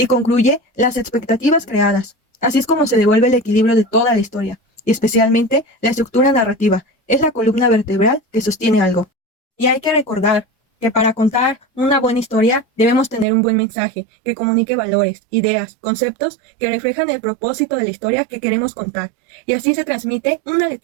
concluye las expectativas creadas. Así es como se devuelve el equilibrio de toda la historia, y especialmente la estructura narrativa, es la columna vertebral que sostiene algo. Y hay que recordar que para contar una buena historia debemos tener un buen mensaje que comunique valores, ideas, conceptos que reflejan el propósito de la historia que queremos contar, y así se transmite una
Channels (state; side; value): drops out; left; at 13.2 s